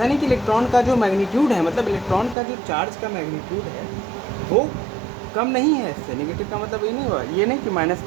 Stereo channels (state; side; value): drops out; left; at 2.4 s